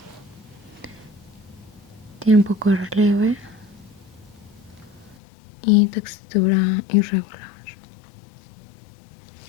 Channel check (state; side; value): drops out; right; at 5.2 s